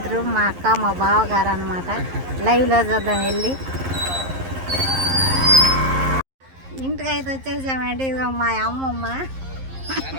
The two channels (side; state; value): left; late; 11 ms